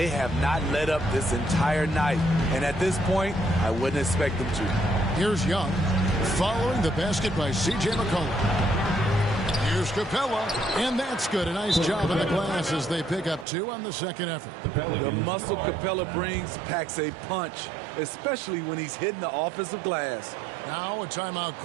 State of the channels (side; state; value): left; drops out; at 13.5 s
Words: have not let up this entire night. And at this point, I wouldn't expect them to. Here's Young, following the basket by C.J. McCollum. Here's Capella, and that's good. A nice job in the glass as they pick up 2 on the second effort. The muscle Capella brings packs a punch, especially when he's hitting the offensive glass. Now a timeout